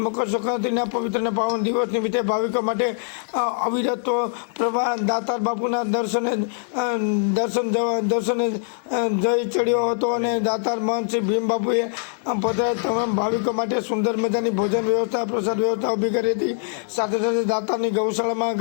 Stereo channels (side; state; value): right; silent; digital silence